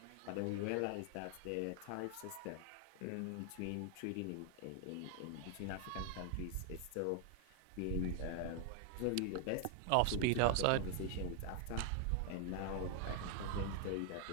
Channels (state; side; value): different; both; correlation 0.00